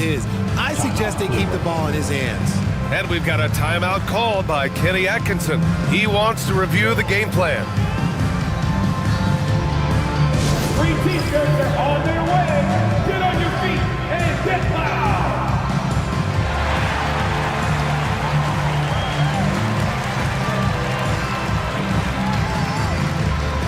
I suggest they keep the ball in his hands. And we've got a timeout called by Kenny Atkinson. He wants to review the game plan. 3 T-shirts are on their way. Get on your feet and get loud.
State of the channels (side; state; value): both; identical; correlation 1.00